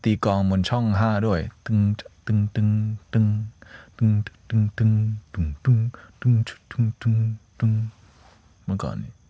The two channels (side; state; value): both; identical; correlation 1.00